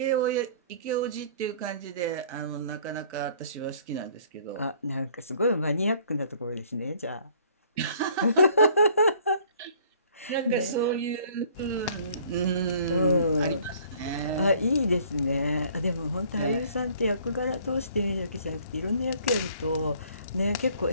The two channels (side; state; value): both; inverted; correlation -0.56